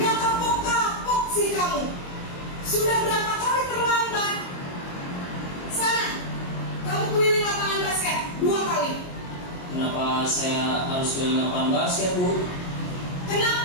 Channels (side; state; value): right; late; 22 ms